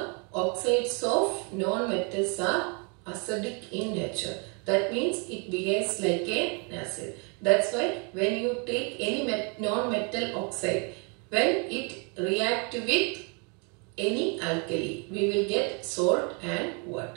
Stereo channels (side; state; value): left; quieter; 35.0 dB